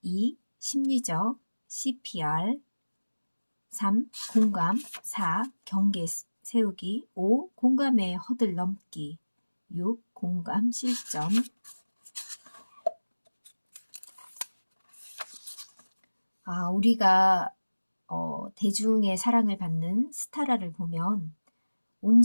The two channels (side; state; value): both; inverted; correlation -1.00